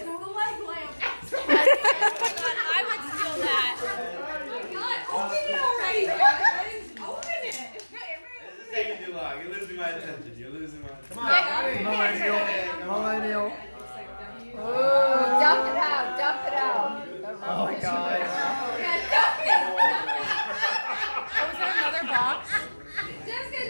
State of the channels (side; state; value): both; inverted; correlation -1.00